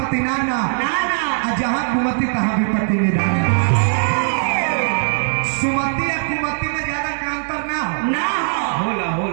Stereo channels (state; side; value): silent; left; digital silence